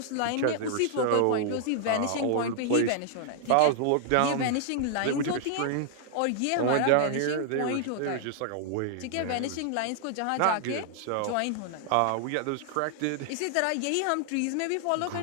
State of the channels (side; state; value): both; different; correlation -0.01